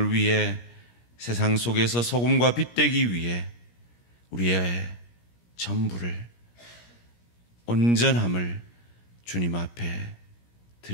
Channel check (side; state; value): right; late; 17 ms